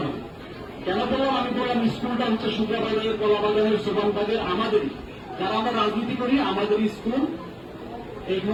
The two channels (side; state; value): both; identical; correlation 1.00